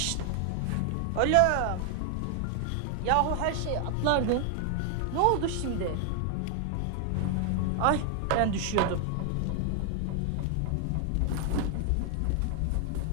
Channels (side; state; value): both; different; correlation 0.00